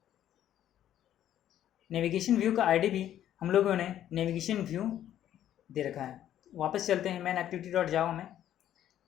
नेविगेशन व्यू का आईडी भी हम लोगों ने नेविगेशन व्यू दे रखा है। वापस चलते हैं मेन एक्टिविटी डॉट जावा में।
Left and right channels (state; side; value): quieter; right; 11.4 dB